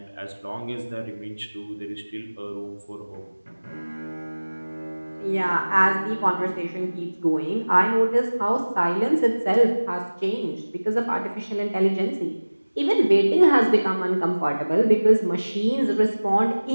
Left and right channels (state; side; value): inverted; both; correlation -1.00